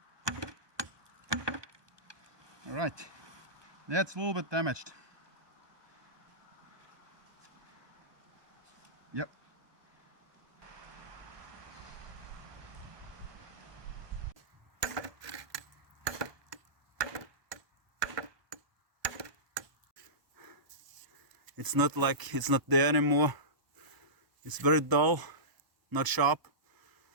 All right. That's a little bit damaged. Yep. It's not like it's not there anymore. It's very dull, not sharp.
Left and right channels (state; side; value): late; left; 1.0 ms